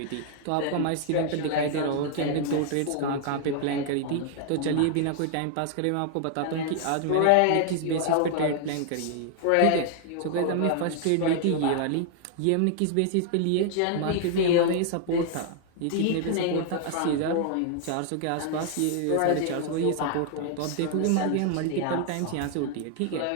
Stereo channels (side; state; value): both; different; correlation 0.00